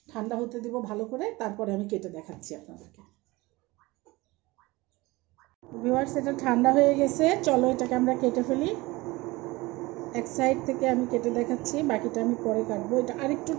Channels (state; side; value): quieter; left; 21.7 dB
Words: ঠান্ডা হতে দিব ভালো করে, তারপরে আমি কেটে দেখাচ্ছি আপনাদেরকে। ভিউয়ার্স, এটা ঠান্ডা হয়ে গেছে, চলো এটাকে আমরা কেটে ফেলি। এক সাইড থেকে আমি কেটে দেখাচ্ছি, বাকিটা আমি পরে কাটবো। এটা আরেকটু